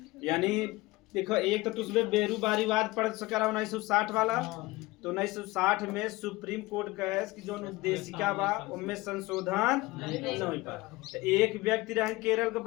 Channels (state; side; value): quieter; right; 20.7 dB